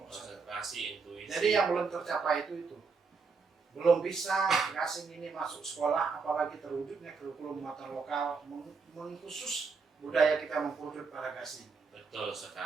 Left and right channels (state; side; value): quieter; left; 4.9 dB